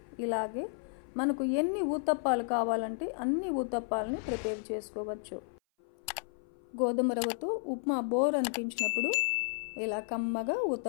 ఇలాగే మనకు ఎన్ని ఊతప్పాలు కావాలంటే అన్ని ఊతప్పాలని ప్రిపేర్ చేసుకోవచ్చు. గోధుమ రవ్వతో ఉప్మా బోర్ అనిపించినప్పుడు ఇలా కమ్మగా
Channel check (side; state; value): right; silent; 56 dB below the other